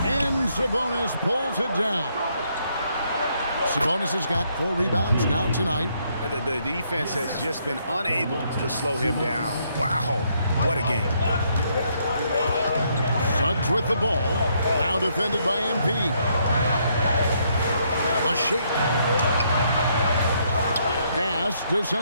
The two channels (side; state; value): both; inverted; correlation -0.72